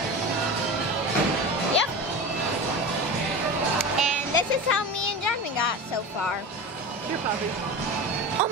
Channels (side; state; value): both; normal; correlation 0.29